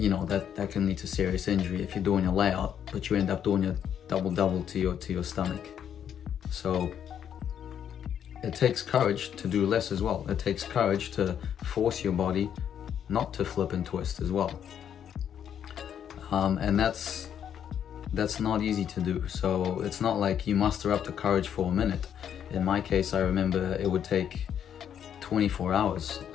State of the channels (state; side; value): quieter; right; 9.0 dB